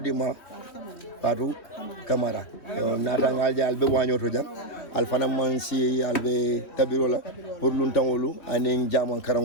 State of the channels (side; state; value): right; late; 3.1 ms